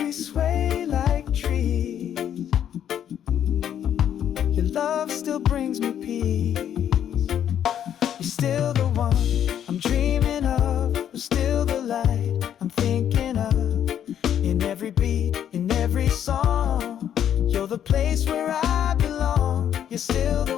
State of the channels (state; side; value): quieter; right; 9.8 dB